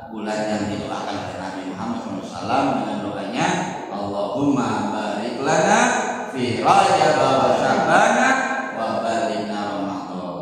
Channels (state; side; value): identical; both; correlation 1.00